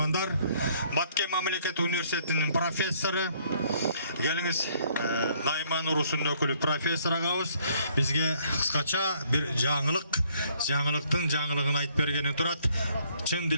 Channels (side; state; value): both; inverted; correlation -0.64